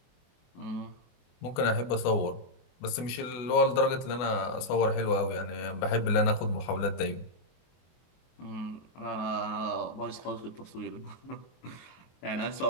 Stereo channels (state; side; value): late; right; 24 ms